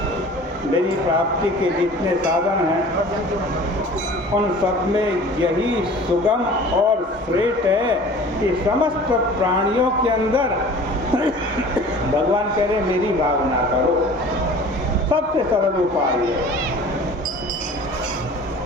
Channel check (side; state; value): both; normal; correlation 0.44